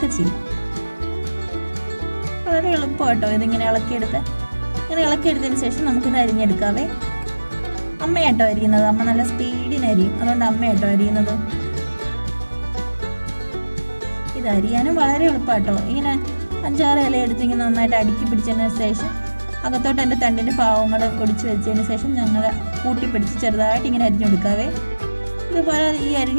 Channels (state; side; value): inverted; both; correlation -1.00